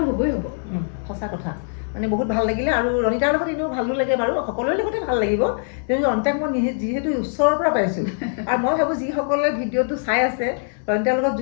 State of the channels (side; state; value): right; silent; 64 dB below the other